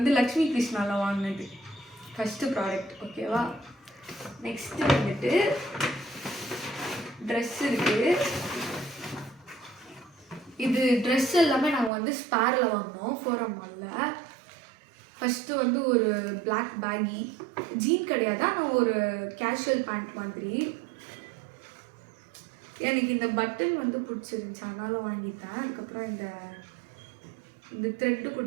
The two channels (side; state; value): left; drops out; at 11.9 s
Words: லக்ஷ்மி கிருஷ்ணாவில் வாங்கினது ஃபஸ்ட்டு ப்ராடக்ட். ஓகேவா? நெக்ஸ்ட்டு வந்துட்டு ட்ரெஸ் இருக்குது. இது ட்ரெஸ் எல்லாமே நாங்கள் வந்து ஸ்பேரில் வாங்கினோம் ஃபோரம் மாலில். ஃபஸ்ட்டு வந்து ஒரு பிளாக் பேகி ஜீன் கிடையாது, ஆனால் ஒரு கேஷுவல் பேண்ட் மாதிரி. எனக்கு இந்த பட்டன் வந்து பிடிச்சிருந்துச்சி, அதனால வாங்கிட்டேன். அதுக்கப்புறம் இந்த த்ரெட்டு